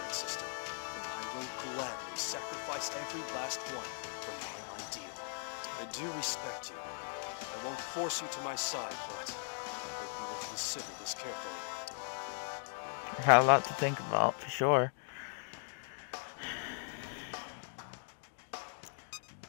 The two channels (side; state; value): right; silent; digital silence